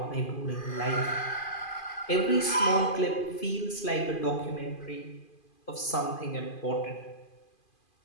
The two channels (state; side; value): late; right; 2.5 ms